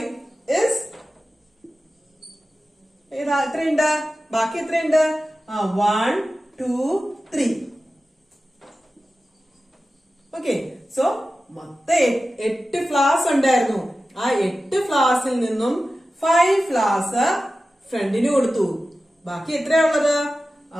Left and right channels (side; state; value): both; normal; correlation 0.94